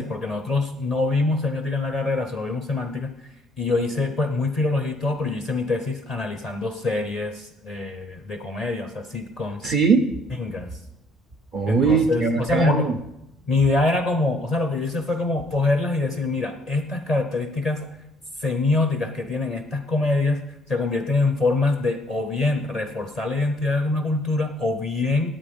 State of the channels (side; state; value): both; normal; correlation 0.63